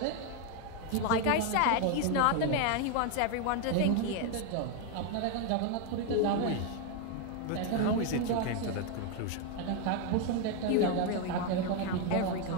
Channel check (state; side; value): different; both; correlation 0.01